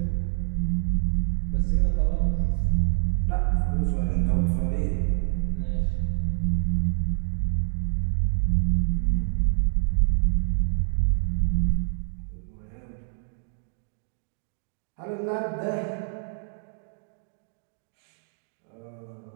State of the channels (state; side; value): silent; left; digital silence